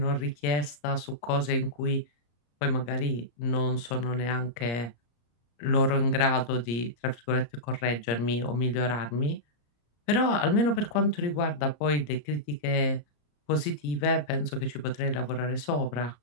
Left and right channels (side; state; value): right; late; 34 ms